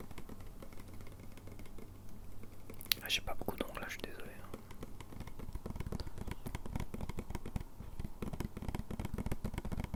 Ah, j'ai pas beaucoup d'ongles là, je suis désolé.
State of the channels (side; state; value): both; identical; correlation 1.00